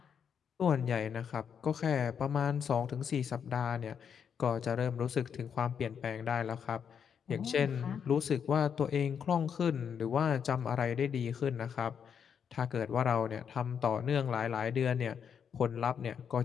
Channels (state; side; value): quieter; right; 7.5 dB